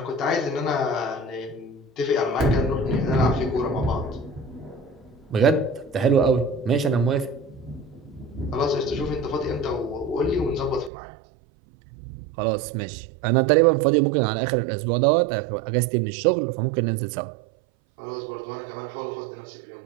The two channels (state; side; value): drops out; left; at 10.9 s